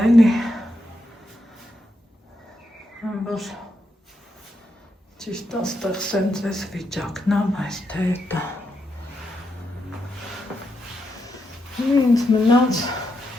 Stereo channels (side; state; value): both; normal; correlation 0.83